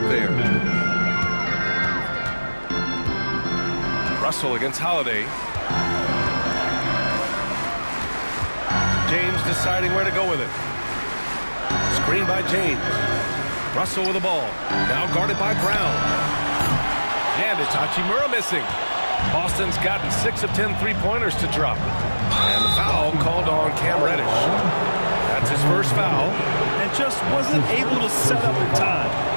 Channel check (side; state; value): both; inverted; correlation -1.00